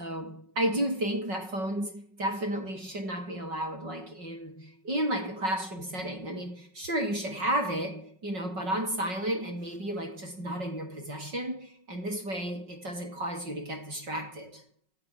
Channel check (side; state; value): left; late; 5.4 ms